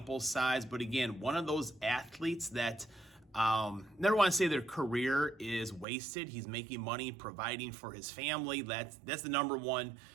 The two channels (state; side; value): drops out; left; at 5.9 s